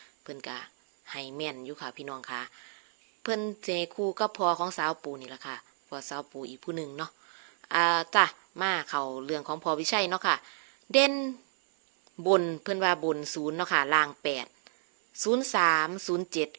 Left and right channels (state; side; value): silent; left; 58 dB below the other